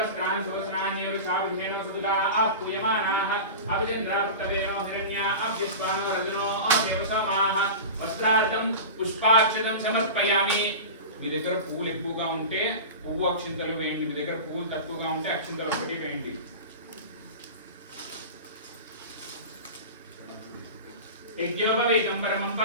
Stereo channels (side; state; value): both; inverted; correlation -0.30